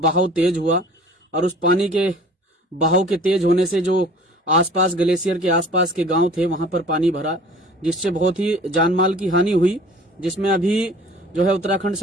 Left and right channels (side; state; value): both; normal; correlation 0.48